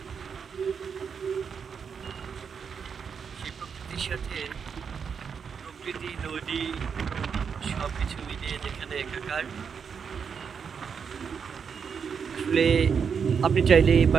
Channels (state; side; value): quieter; left; 6.5 dB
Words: সেই প্রকৃতির সাথে প্রকৃতি, নদী সব কিছু মিলিয়ে যেখানে একাকার। আসলে আপনি চাইলে